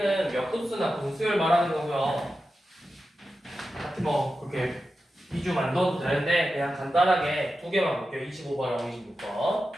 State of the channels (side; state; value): both; normal; correlation 0.91